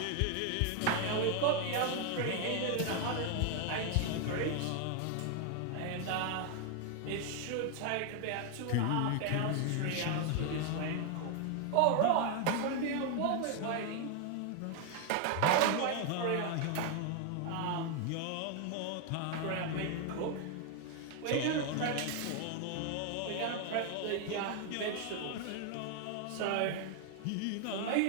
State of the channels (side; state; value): both; different; correlation 0.01